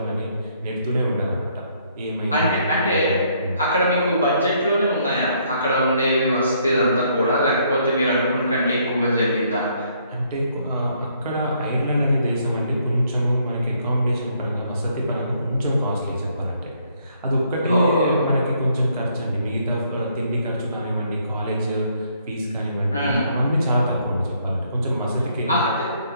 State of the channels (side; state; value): both; inverted; correlation -0.68